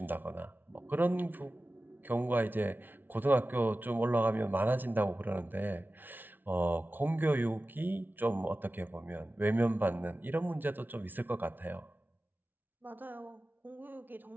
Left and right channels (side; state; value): left; late; 0.089 ms